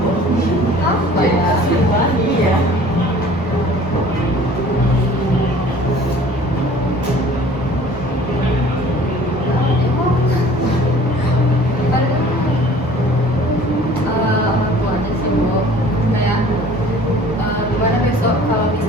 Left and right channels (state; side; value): normal; both; correlation 0.49